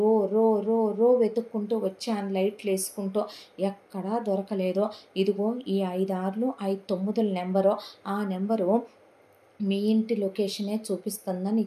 రో రో రో వెతుక్కుంటూ వచ్చాను లైట్లు వేసుకుంటూ. ఎక్కడా దొరకలేదు. ఇదిగో ఈ 5 6 5 9 నెంబరు, ఆ నెంబరు మీ ఇంటి లొకేషనే చూపిస్తుందని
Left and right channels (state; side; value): identical; both; correlation 1.00